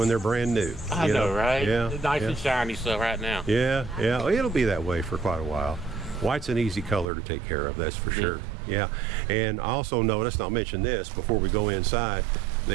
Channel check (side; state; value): left; drops out; at 7.1 s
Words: they're brand new. I know, right? Yeah. It's nice and shiny stuff right now. Yeah, yeah. Well, it'll be that way for quite a while. White's an easy color to take care of, that's for sure. Yeah. And I also noticed, and I'll mention this before we go inside,